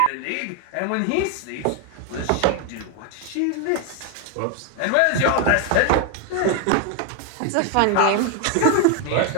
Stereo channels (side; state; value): both; different; correlation 0.01